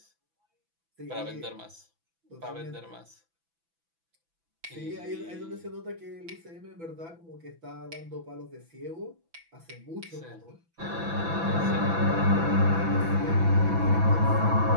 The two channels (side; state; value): left; late; 6.0 ms